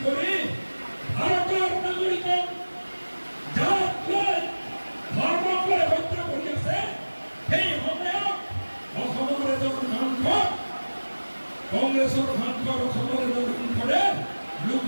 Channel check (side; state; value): both; inverted; correlation -1.00